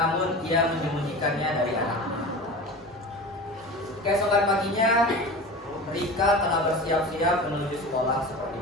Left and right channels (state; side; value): normal; both; correlation 0.32